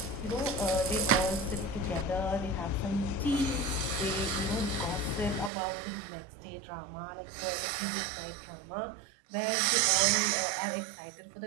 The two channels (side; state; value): left; drops out; at 5.5 s